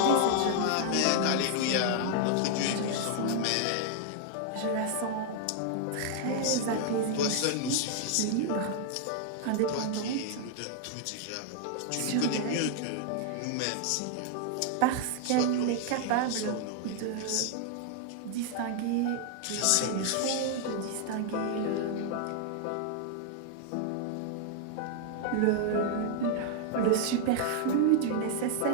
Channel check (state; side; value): different; both; correlation 0.00